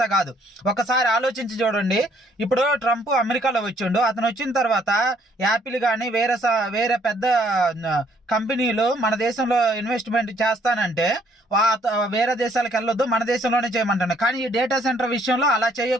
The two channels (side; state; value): both; normal; correlation 0.65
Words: కాదు. ఒకసారి ఆలోచించి చూడండి. ఇప్పుడు ట్రంప్ అమెరికాలో వచ్చిండు. అతను వచ్చిన తర్వాత యాపిల్ కానీ వేరే పెద్ద కంపెనీలు మన దేశంలో ఇన్వెస్ట్మెంట్ చేస్తానంటే వేరే దేశాలకు వెళ్ళొద్దు, మన దేశంలోనే చేయమంటాను. కానీ ఈ డేటా సెంటర్ విషయంలో అలా